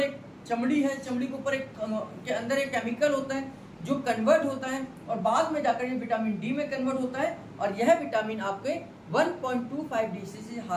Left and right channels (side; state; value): both; identical; correlation 1.00